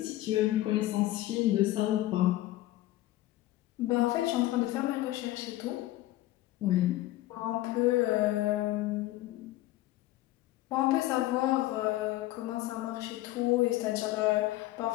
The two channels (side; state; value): right; quieter; 16.1 dB